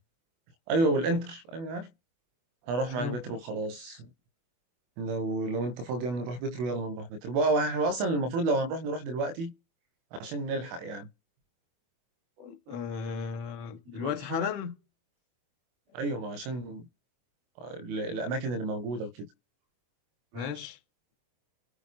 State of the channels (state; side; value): late; left; 24 ms